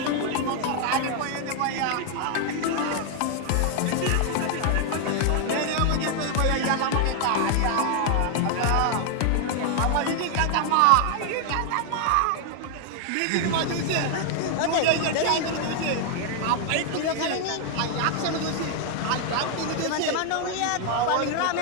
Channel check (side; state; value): both; different; correlation 0.00